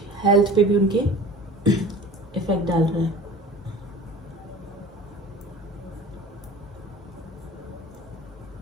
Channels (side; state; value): both; normal; correlation 0.40